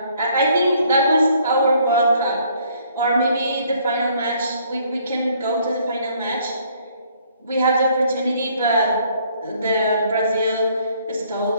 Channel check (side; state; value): both; inverted; correlation -0.63